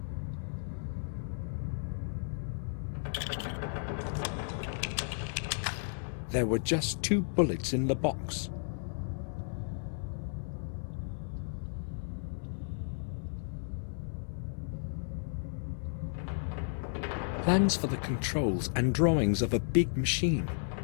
There were just 2 bullets in the box. Plans for the controls and drawings of a big machine.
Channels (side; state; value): right; silent; 55 dB below the other